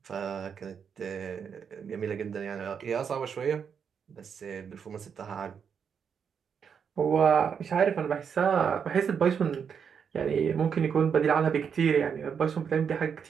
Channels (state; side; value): quieter; left; 7.0 dB